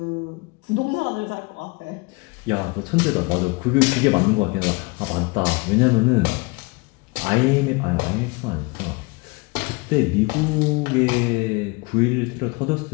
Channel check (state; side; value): quieter; right; 27.1 dB